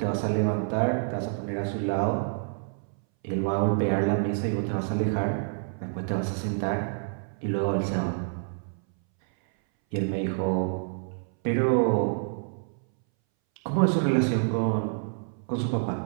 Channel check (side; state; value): left; silent; 60 dB below the other